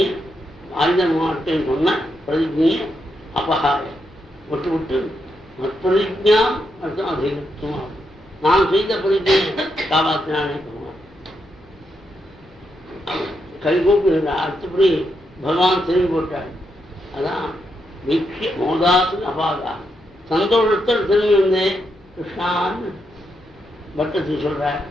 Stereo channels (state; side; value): normal; both; correlation 0.82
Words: ஆயுதம் மாட்டேன்னு சொன்ன பிரதிஜையை அபகாய விட்டு விட்டு பிரதிஜாம் அர்த்தம் அதிகத்துவம் நான் செய்த பிரதிஜையை காப்பாற்றினானே சொல்லுவான். கைகூப்பி அடுத்தபடி பகவான் திரும்பி போட்டார். அதான் வீக்ஷிய மோதாசு அபாகா சந்தோஷத்தில் திரும்பி வந்தேன் கிருஷ்ணான்னு பட்டத்து சொல்றார்.